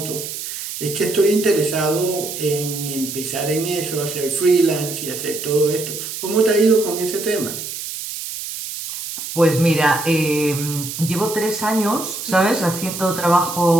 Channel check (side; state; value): right; noise; hiss, 7 dB below the sound